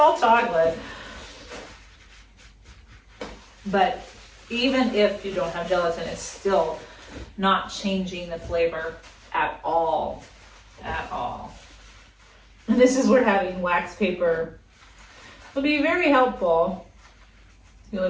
chocolate. But even if you don't have gelatin, it's still not changing the flavor at all. At all. And this is where having wax paper would be very helpful. It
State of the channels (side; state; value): both; identical; correlation 1.00